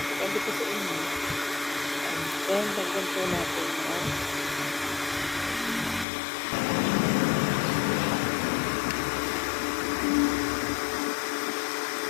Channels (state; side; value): drops out; right; at 6.1 s